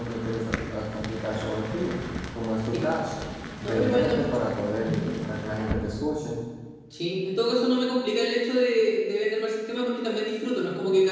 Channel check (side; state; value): both; identical; correlation 1.00